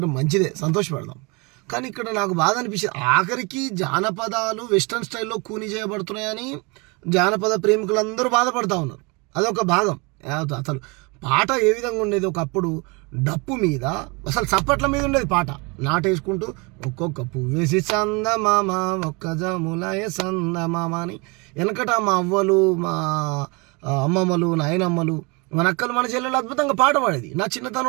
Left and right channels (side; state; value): left; quieter; 28.9 dB